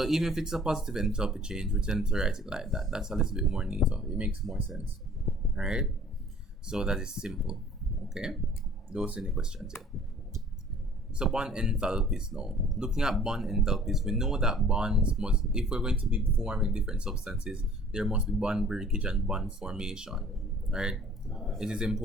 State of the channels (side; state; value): both; normal; correlation 0.53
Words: even if it's a positive enthalpy change, we tend to write it like that. That's a little bit more neater. It makes more sense. All right. So that is simple. Okay. Those are any questions here. So bond enthalpies now. Looking at bond enthalpies, we know that bonds must, if we're going to be forming different substances, there must be bond breakage and bond formation, right? It is